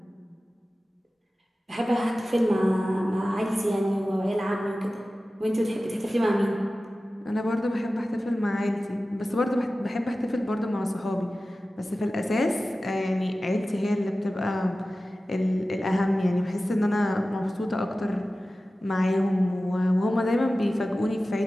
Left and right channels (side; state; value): both; normal; correlation 0.96